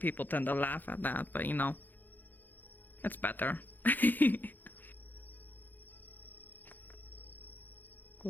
tend to laugh at that, but you know, it's better.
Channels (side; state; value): right; late; 0.086 ms